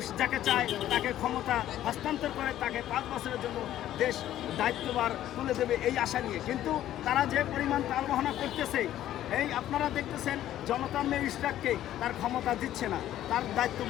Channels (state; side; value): quieter; right; 12.6 dB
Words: যাকে চায় তাকে ক্ষমতা হস্তান্তর করে তাকে 5 বছরের জন্য দেশ দায়িত্বভার তুলে দেবে এই আশা নিয়ে। কিন্তু তারা যে পরিমাণ তালবাহনা করতেছে, এই আপনারা দেখতেছেন জনতার মেজিস্ট্রেটকে তার ক্ষমতা দিচ্ছে না, তার দায়িত্ব